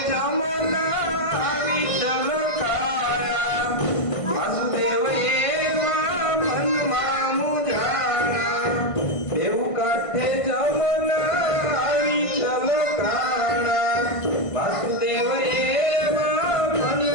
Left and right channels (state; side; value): late; right; 1.5 ms